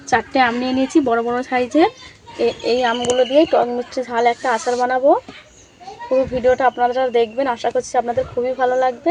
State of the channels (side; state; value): both; identical; correlation 1.00